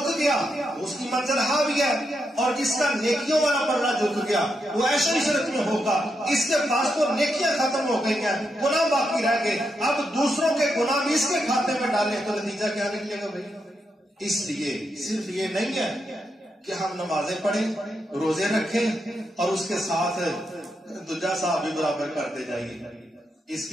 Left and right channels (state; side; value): normal; both; correlation 0.83